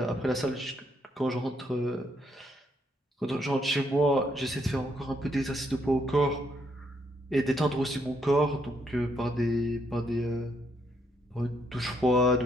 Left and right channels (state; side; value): normal; both; correlation 0.74